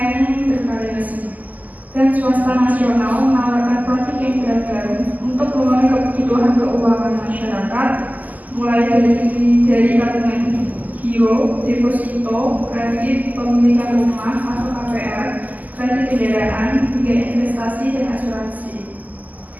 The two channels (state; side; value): late; left; 0.080 ms